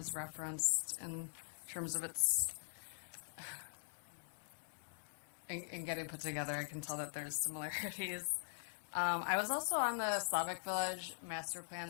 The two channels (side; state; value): right; silent; digital silence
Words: referenced in terms of its in getting put together. I can tell that there's similarities. I was also on the Slavic Village Master